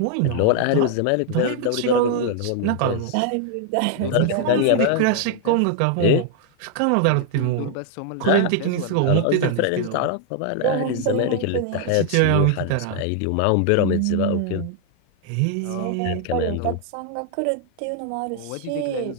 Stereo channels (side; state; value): both; different; correlation 0.00